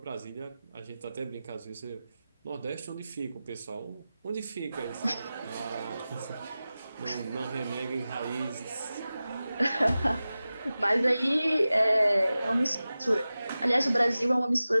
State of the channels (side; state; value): both; inverted; correlation -0.95